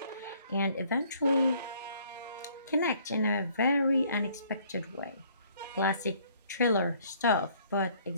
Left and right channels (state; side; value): inverted; both; correlation -0.60